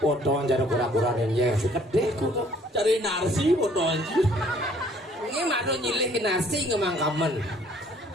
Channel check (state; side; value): normal; both; correlation 0.59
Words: Foto jadi kura-kura ninja si kedek kudu Cari narsi foto anjir. ini malu nyilih ke nasi ngemang kamen.